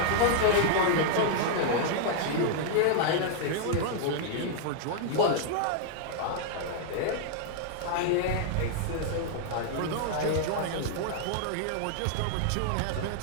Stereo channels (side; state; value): both; different; correlation -0.01